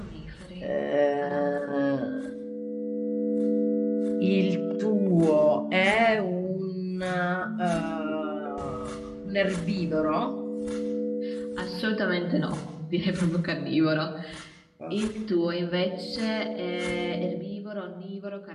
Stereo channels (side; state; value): both; identical; correlation 1.00